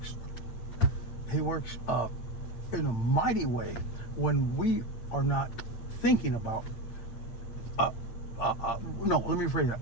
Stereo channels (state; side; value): late; right; 8.7 ms